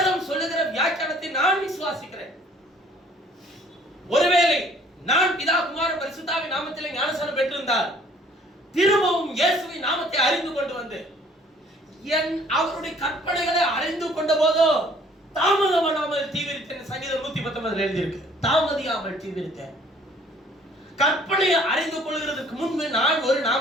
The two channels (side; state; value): both; normal; correlation 0.57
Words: சொல்லுகிற வியாக்கியானத்தை நான் விசுவாசிக்கிறேன். ஒருவேளை நான் பிதா குமாரன் பரிசுத்தாவின் நாமத்திலே ஞானஸ்நானம் பெற்றிருந்தால் திரும்பவும் இயேசுவின் நாமத்தை அறிந்து கொண்டு வந்து அவருடைய கற்பனைகளை அறிந்து கொண்ட போதோ தாமதமானால் தீவிரித்தேன். சங்கீதம் 119 எழுதியிருக்கு, தாமதியாமல் தீவிரித்தேன். கற்பனையை அறிந்து கொள்கிறதுக்கு முன்பு நான் ஒரு